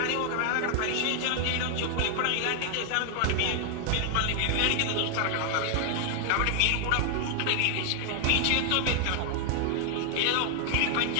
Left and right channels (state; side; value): different; both; correlation 0.00